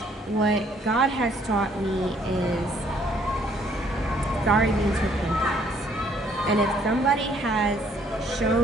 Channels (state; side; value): normal; both; correlation 0.64